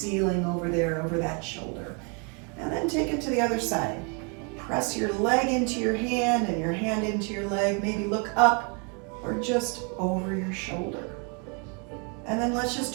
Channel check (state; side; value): quieter; left; 35.7 dB